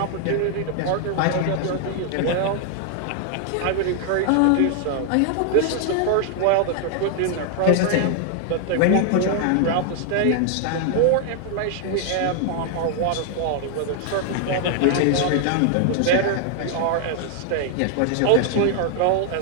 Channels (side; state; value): both; different; correlation 0.00